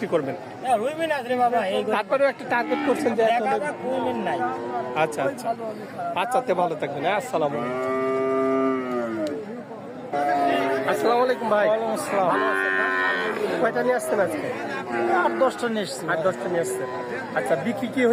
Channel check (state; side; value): identical; both; correlation 1.00